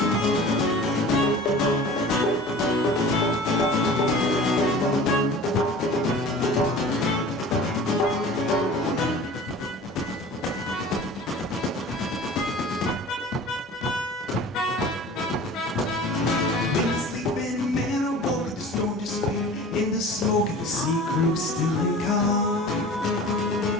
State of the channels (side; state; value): both; normal; correlation 0.41